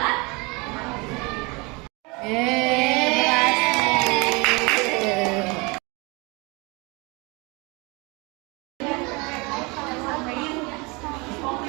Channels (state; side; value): quieter; left; 27.4 dB